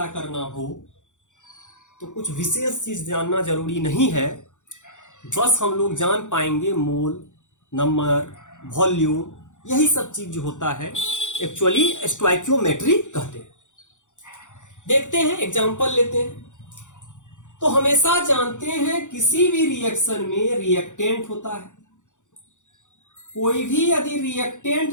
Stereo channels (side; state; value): right; late; 0.85 ms